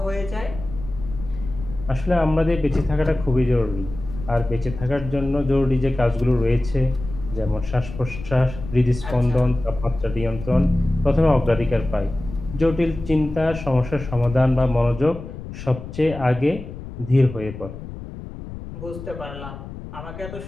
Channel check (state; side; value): noise; left; rumble, 11 dB below the sound